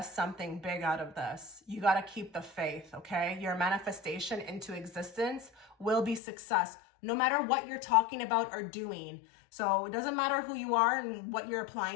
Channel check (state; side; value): drops out; right; at 6.2 s